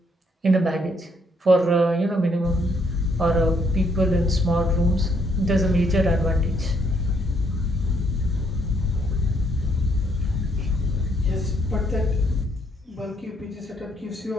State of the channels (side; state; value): both; normal; correlation 0.70